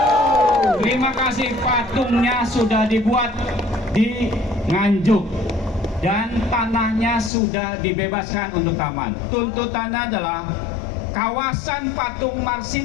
Terima kasih, patungnya sudah dibuat di Nganjuk dan tanahnya sudah dibebaskan untuk taman. Tuntutannya adalah kawasan Patung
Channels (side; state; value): right; drops out; at 7.3 s